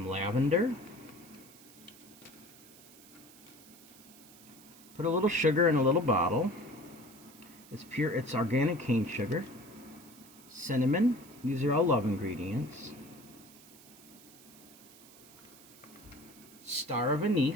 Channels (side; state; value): right; noise; hiss, 21 dB below the sound